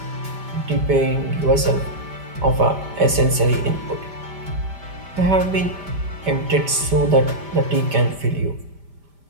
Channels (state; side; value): late; left; 5.0 ms